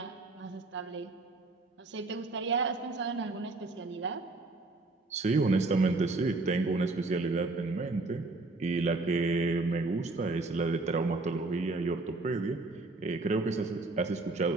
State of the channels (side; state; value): left; quieter; 3.3 dB